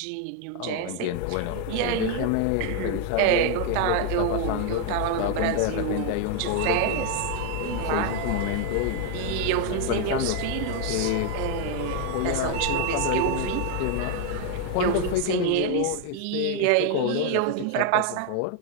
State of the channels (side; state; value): both; different; correlation 0.00